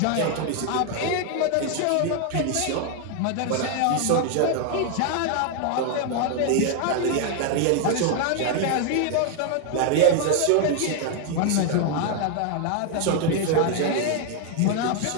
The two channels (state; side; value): different; both; correlation 0.00